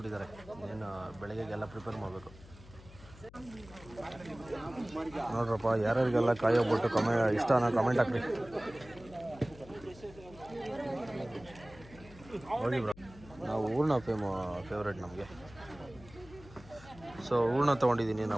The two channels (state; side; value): noise; left; hum, 20 dB below the sound